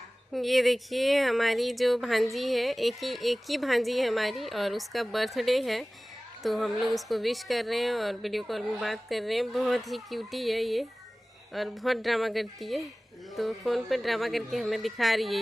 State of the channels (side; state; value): both; normal; correlation 0.98